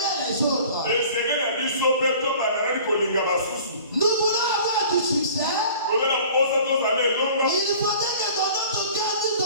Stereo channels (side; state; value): both; inverted; correlation -0.46